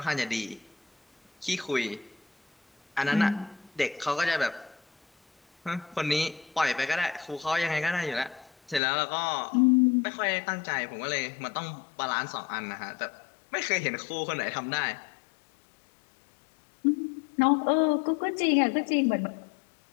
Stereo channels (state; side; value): drops out; right; at 8.8 s